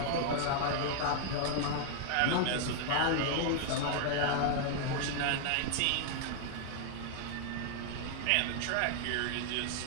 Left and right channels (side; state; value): both; different; correlation 0.00